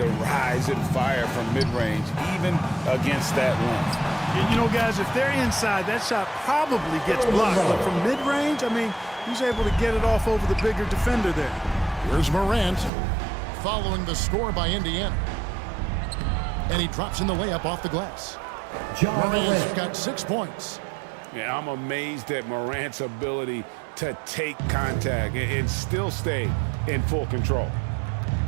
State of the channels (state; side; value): drops out; left; at 12.9 s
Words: rise and fire from mid-range, even against that length. You know, guys, if they're inside, that shot probably gets blocked. But from mid-range, I mean, he's able to get it off over the bigger defender there. Here's Morant following the score by Indiana. And he drops in the layup off the glass. Morant's got 6 points. Yeah, I'm amazed at Morant's ability to take contact and still stay in full control.